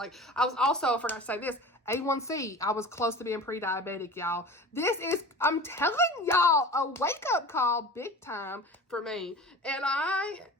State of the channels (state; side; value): normal; both; correlation 0.37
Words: I was also, I forgot to say this, A1C. I was close to being pre-diabetic, y'all. This is, I'm telling y'all, a wake-up call big time for me. And